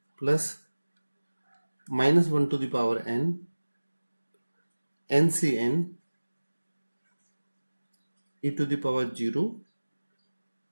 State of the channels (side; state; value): both; inverted; correlation -1.00